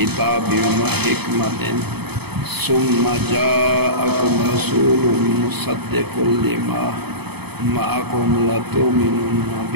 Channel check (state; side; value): late; left; 0.98 ms